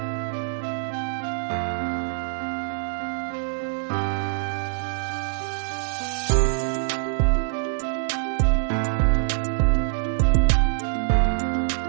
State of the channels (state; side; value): silent; left; digital silence